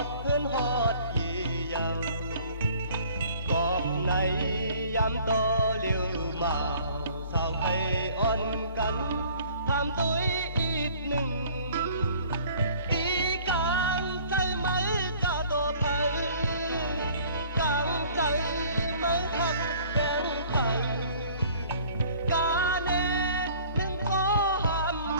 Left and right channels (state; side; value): inverted; both; correlation -0.53